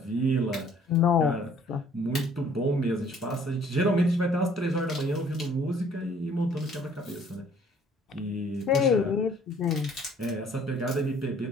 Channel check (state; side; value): normal; both; correlation 0.58